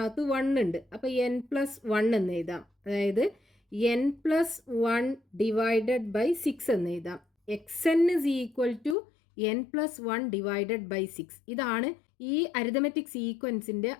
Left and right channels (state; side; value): drops out; right; at 9.0 s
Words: 1 ഉണ്ട്. അപ്പോൾ n+1 എന്ന് എഴുതാം. അതായത് n+1 ഡിവൈഡഡ് ബൈ 6 എന്ന് എഴുതാം. xn is equal to n+1 divided by 6. ഇതാണ് ഈ അരിതമെറ്റിക് സീക്വൻസിന്റെ